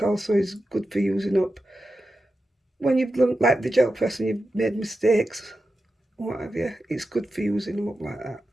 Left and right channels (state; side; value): normal; both; correlation 0.91